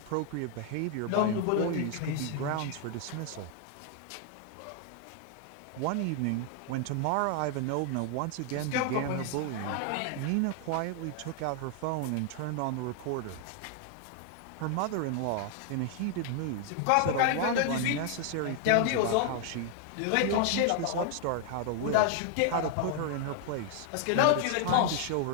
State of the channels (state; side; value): different; both; correlation 0.00